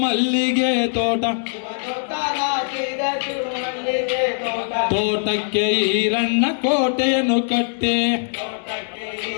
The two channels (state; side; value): silent; right; digital silence